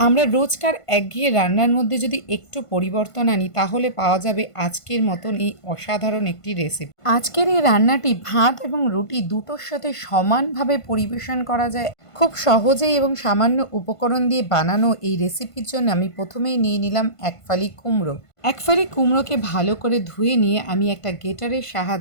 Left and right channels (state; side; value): late; right; 1.5 ms